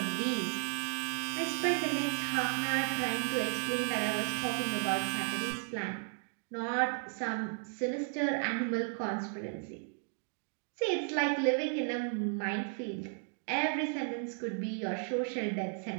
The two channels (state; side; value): silent; left; 55 dB below the other